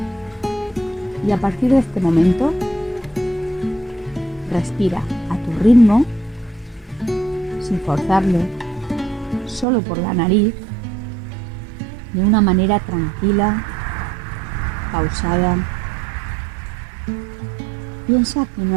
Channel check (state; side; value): drops out; left; at 9.7 s